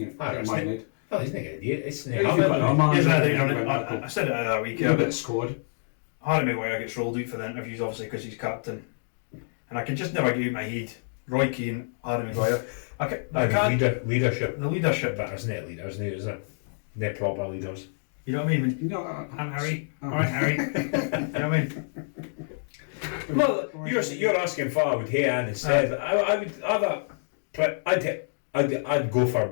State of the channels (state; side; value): silent; right; digital silence